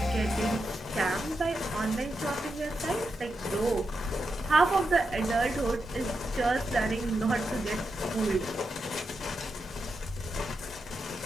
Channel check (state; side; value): normal; both; correlation 0.86